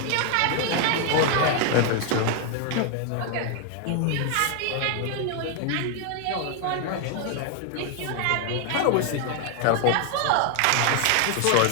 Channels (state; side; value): different; both; correlation 0.01